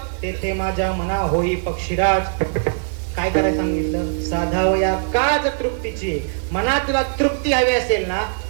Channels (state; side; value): silent; left; digital silence